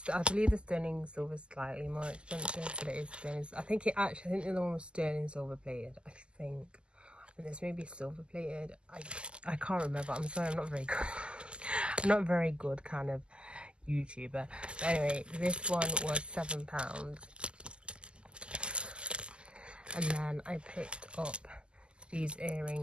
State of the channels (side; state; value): left; late; 0.050 ms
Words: I believe the sterling silver is slightly more expensive, but it is sterling. I think the other one was sterling silver plated. I think this may be silver plated. I can't remember. I'm sorry, I'm not very good. I'm not very good kind of YouTuber. But anyway, this one was £7. And then I picked up these